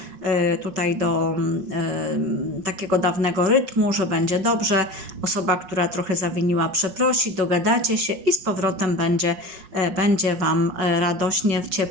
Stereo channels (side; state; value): left; late; 5.3 ms